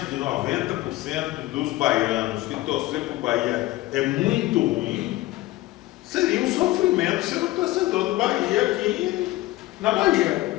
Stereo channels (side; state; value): right; quieter; 17.8 dB